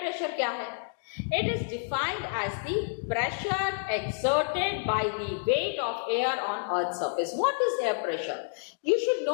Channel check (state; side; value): silent; right; digital silence